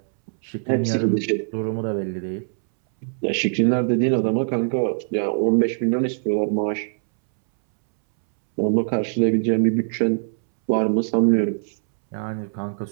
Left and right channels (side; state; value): left; silent; 64 dB below the other